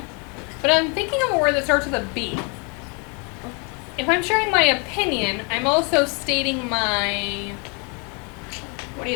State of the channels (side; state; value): right; quieter; 34.2 dB